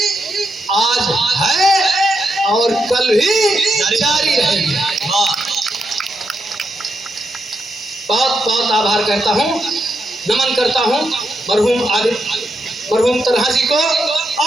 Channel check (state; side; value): normal; both; correlation 0.83